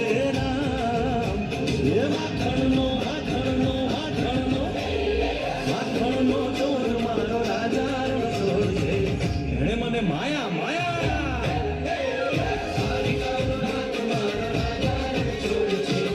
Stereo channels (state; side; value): identical; both; correlation 1.00